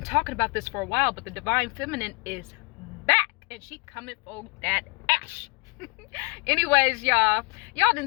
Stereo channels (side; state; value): right; quieter; 29.8 dB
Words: talking about this for a while, but the divine feminine is back and she coming for that ash. Anyways, y'all done